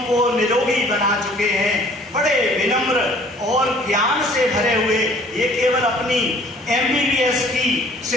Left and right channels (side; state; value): both; normal; correlation 0.54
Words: को निरोगी बना चुके हैं, बड़े विनम्र और ज्ञान से भरे हुए। ये केवल अपनी MBBS की